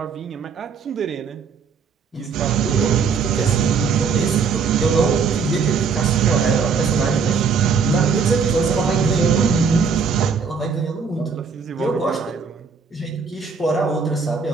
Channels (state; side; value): quieter; left; 5.7 dB